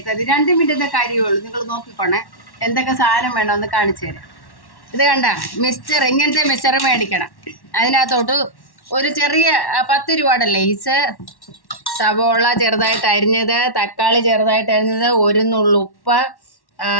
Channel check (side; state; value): right; late; 1.1 ms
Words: 2 മിനിറ്റിൻ്റെ കാര്യമേ ഉള്ളൂ. നിങ്ങൾ നോക്കിക്കോണേ എന്തൊക്കെ സാധനം വേണമെന്ന് കാണിച്ചു തരാം. ഇത് കണ്ട മിക്സ്ചർ, ഇങ്ങനത്തെ മിക്സ്ചർ മേടിക്കണം. അതിനകത്തോട്ട് ഒരു ചെറിയ 10 രൂപയുടെ ലേസ്, സവോള ചെറുതായിട്ട് അരിഞ്ഞത്, തക്കാളി ചെറുതായിട്ട് അരിഞ്ഞത്, ഒരു നുള്ളുപ്പ്,